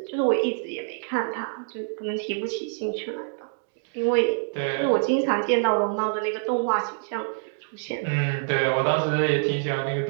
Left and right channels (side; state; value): left; silent; digital silence